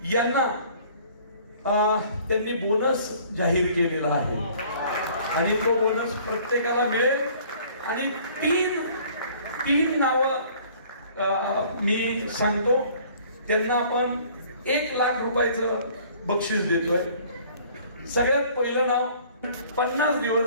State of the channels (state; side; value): inverted; both; correlation -0.54